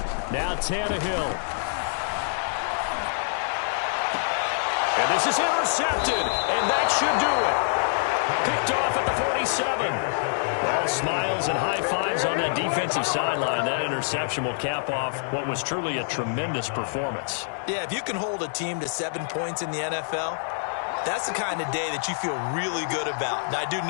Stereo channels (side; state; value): right; silent; digital silence